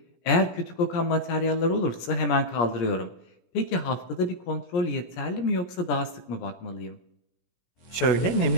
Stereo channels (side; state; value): right; late; 17 ms